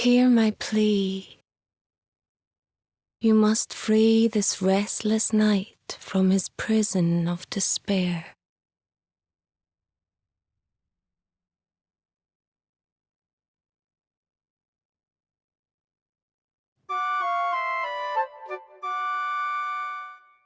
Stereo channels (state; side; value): identical; both; correlation 1.00